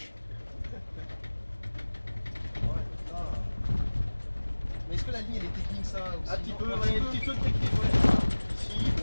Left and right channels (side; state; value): both; inverted; correlation -1.00